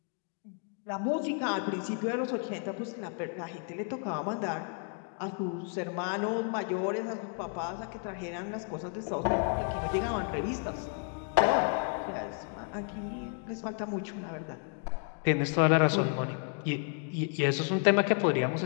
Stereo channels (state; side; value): quieter; right; 39.1 dB